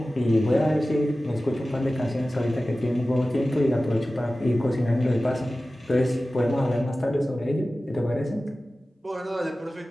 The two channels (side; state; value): both; normal; correlation 0.96